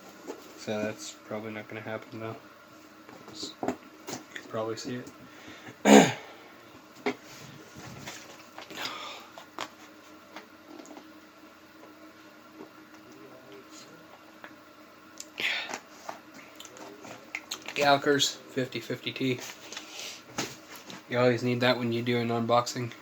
So that's probably not going to happen though. You can probably see it. Galkers 50/50T. You always need that when you do an unboxing.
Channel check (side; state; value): both; identical; correlation 1.00